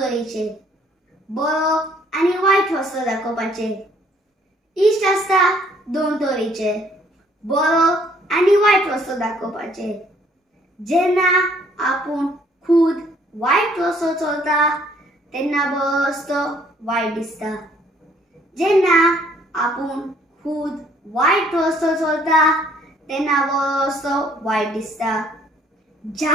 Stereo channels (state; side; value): normal; both; correlation 0.62